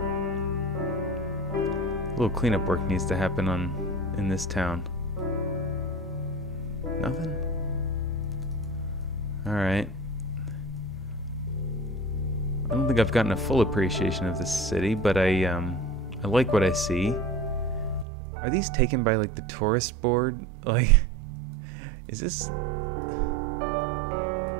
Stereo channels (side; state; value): left; drops out; at 18.1 s